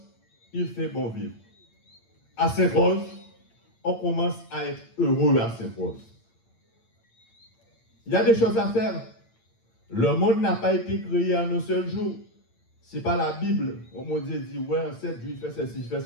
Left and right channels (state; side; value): late; right; 8.8 ms